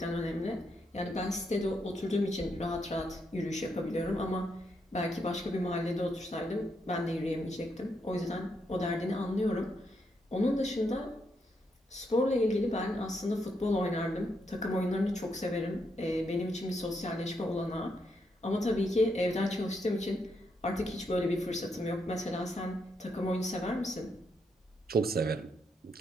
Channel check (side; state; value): both; normal; correlation 0.79